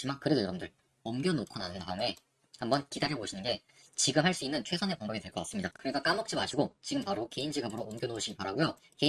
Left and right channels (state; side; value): identical; both; correlation 1.00